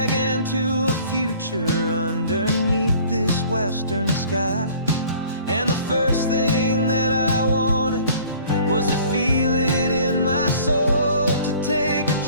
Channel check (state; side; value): inverted; both; correlation -0.51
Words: and to a future underneath this western sky. And the first thing that I wanted was to feel it in my soul, to take a